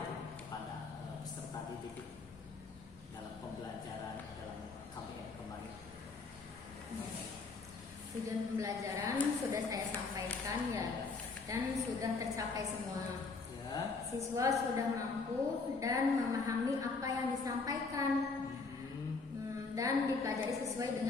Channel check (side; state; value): right; quieter; 4.2 dB